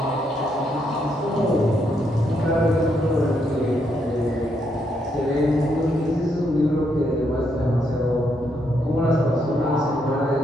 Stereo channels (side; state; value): both; normal; correlation 0.77